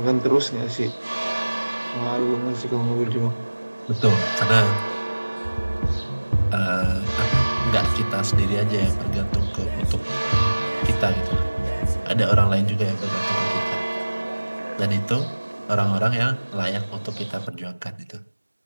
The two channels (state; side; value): inverted; both; correlation -1.00